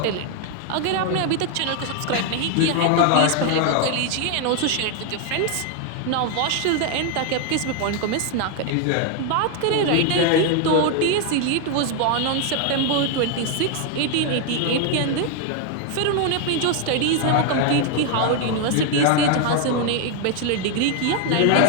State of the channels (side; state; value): both; different; correlation 0.01